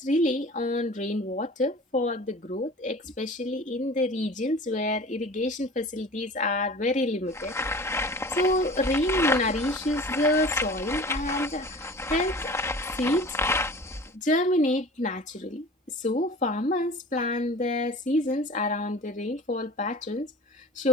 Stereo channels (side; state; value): both; normal; correlation 0.40